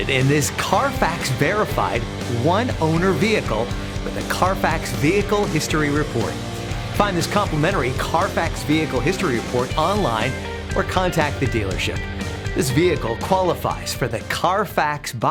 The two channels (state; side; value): identical; both; correlation 1.00